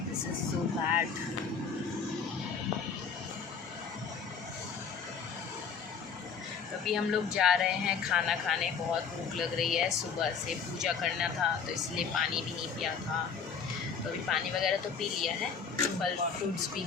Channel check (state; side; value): quieter; right; 6.2 dB